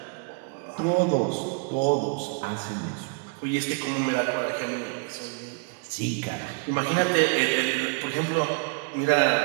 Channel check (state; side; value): quieter; left; 34.1 dB